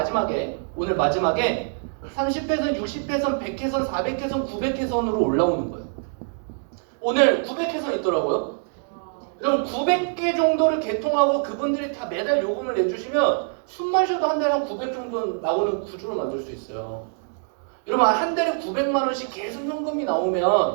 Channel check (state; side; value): silent; left; 62 dB below the other